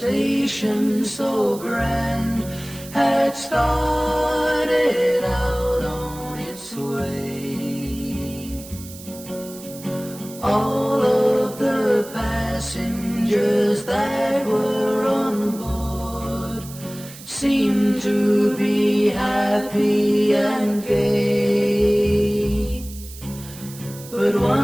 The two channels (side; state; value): right; noise; hiss, 16 dB below the sound